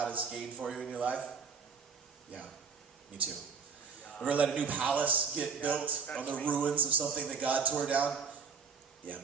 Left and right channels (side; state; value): left; quieter; 5.9 dB